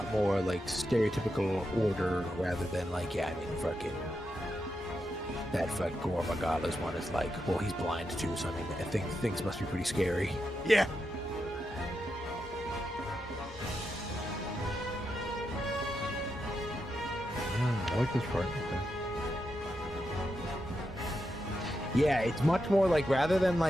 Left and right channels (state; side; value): normal; both; correlation 0.86